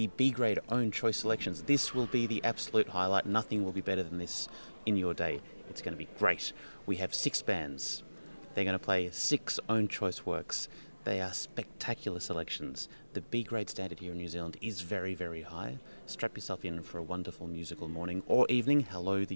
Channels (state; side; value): inverted; both; correlation -1.00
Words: B-grade own choice selections. This will be the absolute highlight. Nothing will be better than this in your day. It's going to be great. We have 6 bands. They're going to play 6 own choice works. They are spectacular selections. The B-grade standard here in New Zealand is very, very high. Strap yourself in for a wonderful musical morning or evening. Hello,